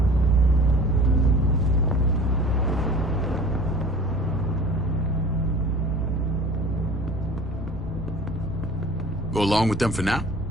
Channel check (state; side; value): normal; both; correlation 0.43